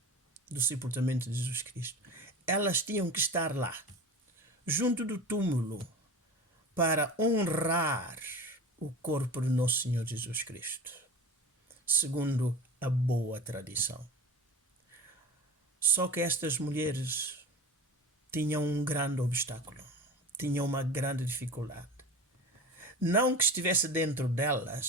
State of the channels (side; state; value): both; normal; correlation 0.33